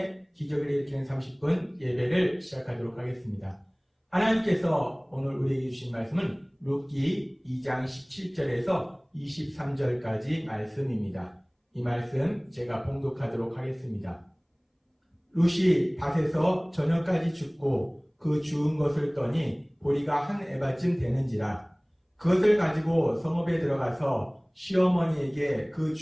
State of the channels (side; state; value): both; identical; correlation 1.00